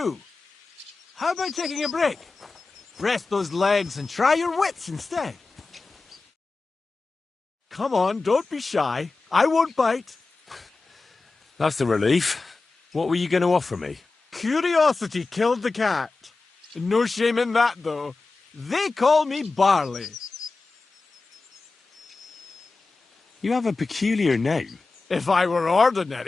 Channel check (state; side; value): quieter; right; 3.8 dB